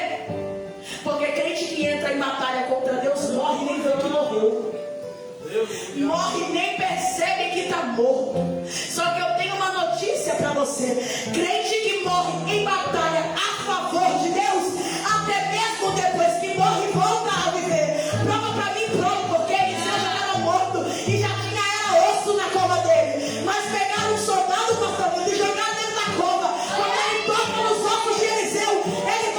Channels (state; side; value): identical; both; correlation 1.00